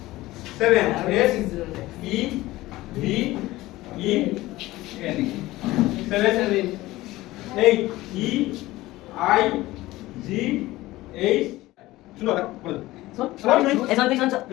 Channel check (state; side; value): quieter; right; 17.9 dB